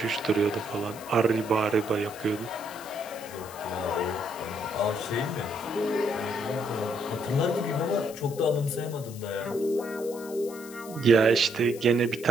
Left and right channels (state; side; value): noise; left; hiss, 17 dB below the sound